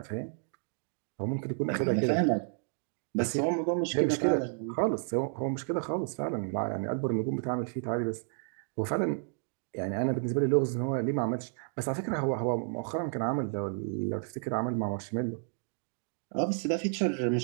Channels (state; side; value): silent; left; 57 dB below the other